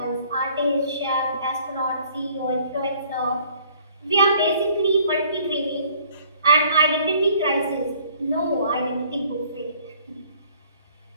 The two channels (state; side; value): inverted; both; correlation -0.58